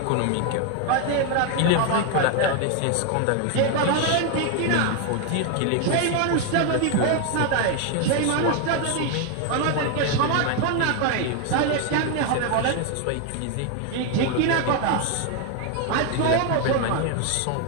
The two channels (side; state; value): both; different; correlation 0.01